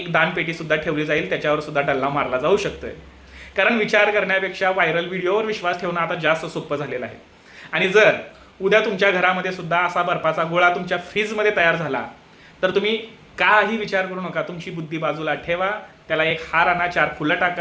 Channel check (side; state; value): both; identical; correlation 1.00